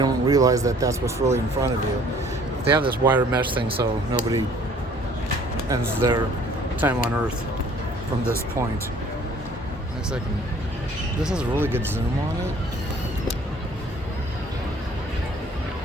realize that that's what's really in front of you. They have this wire mesh thing, so nobody ends their time on Earth from this point. Next second. This has a really good zoom on it.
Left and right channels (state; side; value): normal; both; correlation 0.55